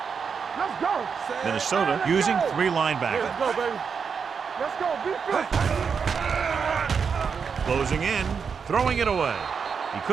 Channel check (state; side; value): quieter; left; 6.1 dB